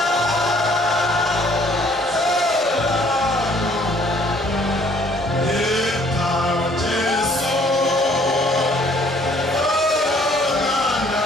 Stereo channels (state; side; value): normal; both; correlation 0.60